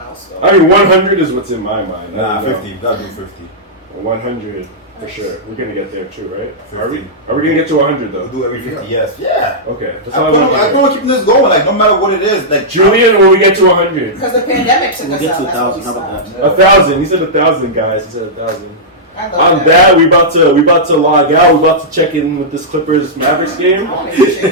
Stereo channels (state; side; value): normal; both; correlation -0.12